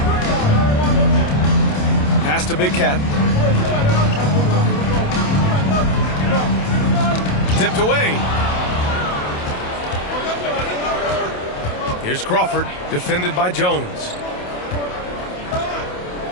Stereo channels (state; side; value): late; right; 28 ms